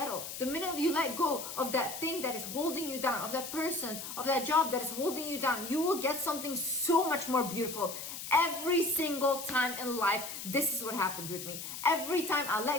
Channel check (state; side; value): noise; left; hiss, 8 dB below the sound